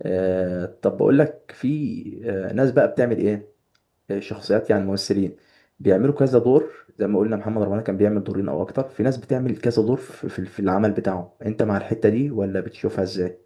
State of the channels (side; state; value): both; identical; correlation 1.00